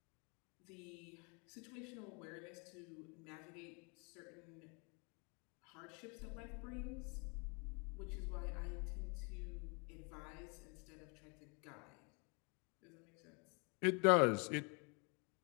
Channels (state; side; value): quieter; right; 34.6 dB